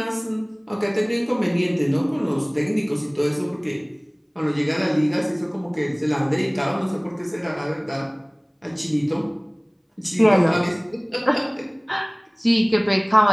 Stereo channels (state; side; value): identical; both; correlation 1.00